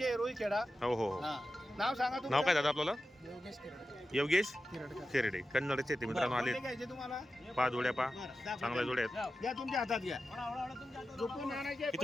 रुईखेडा. हो हो हो. हा. नाव सांगा तुमचं. नाव काय दादा आपल्याला? योगेश खेरडे. कन्नडचे ते मित्रांनो आले. कोणते घ्यायचे तुम्हाला? 5 जोड्या पा बरं, दाखवा. चांगल्या जोड्या आहेत. घ्या तुमच्या हातात घ्या. झोपून आणायचे.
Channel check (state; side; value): normal; both; correlation 0.92